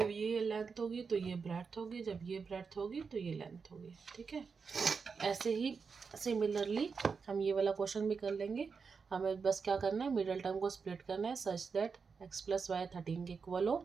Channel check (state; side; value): quieter; left; 5.4 dB